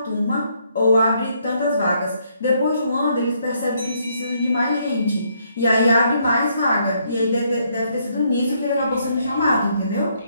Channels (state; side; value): inverted; both; correlation -0.72